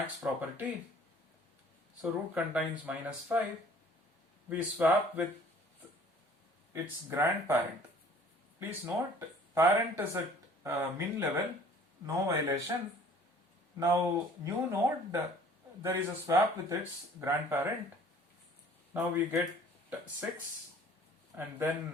property. So root contains minus 5. We swap with its grandparent. Please note, parent is at min level, no violation. Now new node, there is a swap with its grandparent. Now we get 6 and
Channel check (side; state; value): both; normal; correlation 0.52